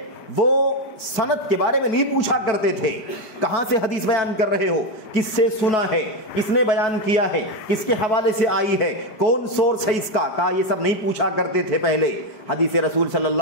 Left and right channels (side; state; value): right; late; 4.6 ms